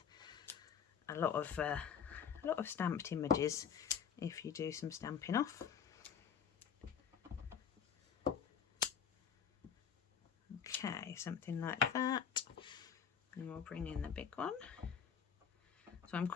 a lot of stamped images if you do some stamping off. Okay, something like that. And we'll bring in the big one. So I'm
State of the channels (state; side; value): quieter; right; 7.4 dB